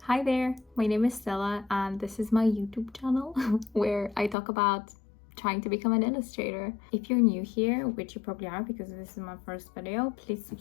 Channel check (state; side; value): drops out; right; at 4.4 s